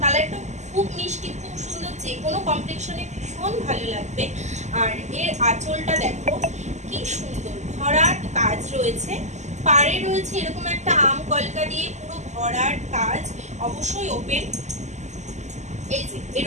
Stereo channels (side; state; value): left; late; 0.34 ms